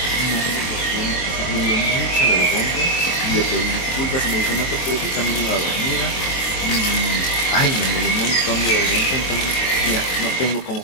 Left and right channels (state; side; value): late; right; 23 ms